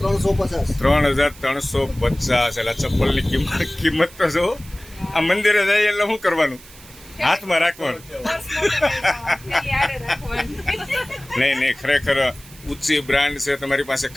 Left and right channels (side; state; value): right; noise; hiss, 21 dB below the sound